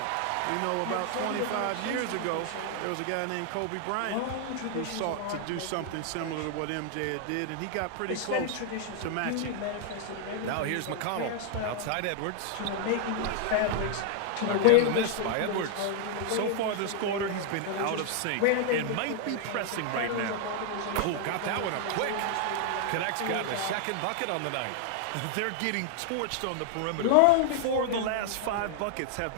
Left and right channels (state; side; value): different; both; correlation 0.00